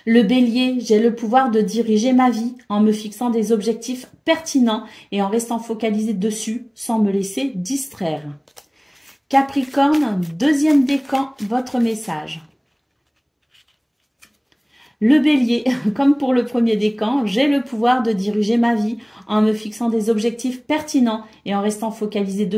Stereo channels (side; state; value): both; identical; correlation 1.00